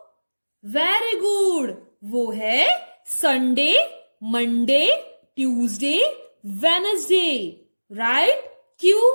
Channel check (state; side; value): inverted; both; correlation -1.00